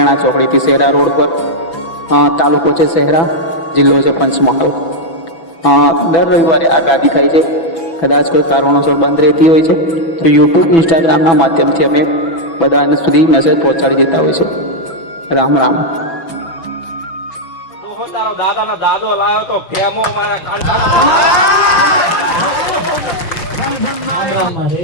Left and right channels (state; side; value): late; right; 6.0 ms